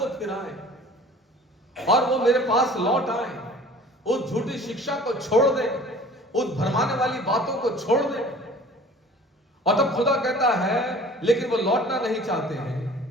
फिराएं और वो मेरे पास लौट आए, उस झूठी शिक्षा को छोड़ दें, उस भरमाने वाली बातों को छोड़ दें। और तब खुदा कहता है लेकिन वो लौटना नहीं चाहते हैं,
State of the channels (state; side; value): normal; both; correlation 0.47